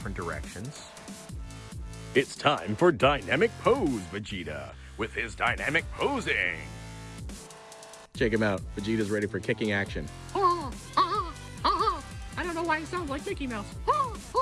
directions. It's time for Dynamic Pose Vegeta with his dynamic posing. Check him out. Vegeta's ready for kicking action. I don't know why it sounds like Mickey Mouse.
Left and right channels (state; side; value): identical; both; correlation 1.00